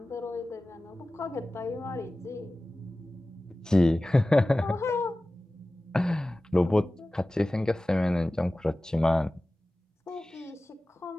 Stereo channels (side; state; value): both; normal; correlation 0.97